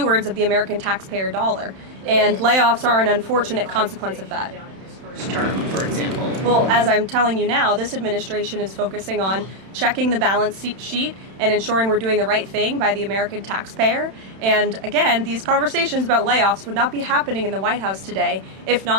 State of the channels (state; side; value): late; left; 31 ms